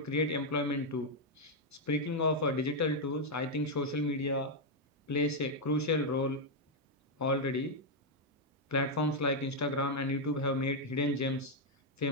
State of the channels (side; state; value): both; normal; correlation 0.00